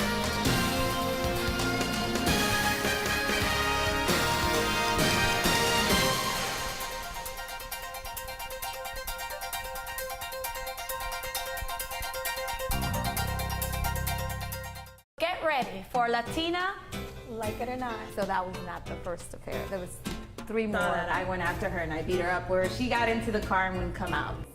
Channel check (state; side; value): identical; both; correlation 1.00